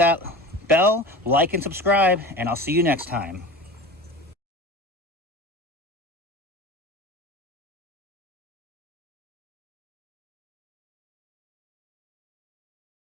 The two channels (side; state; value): both; normal; correlation 0.33